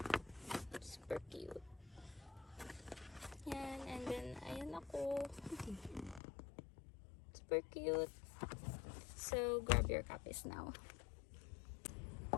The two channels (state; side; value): drops out; right; at 6.2 s